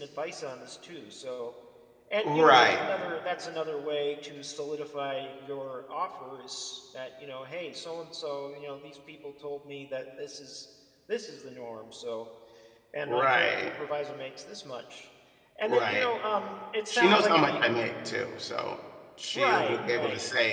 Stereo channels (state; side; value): identical; both; correlation 1.00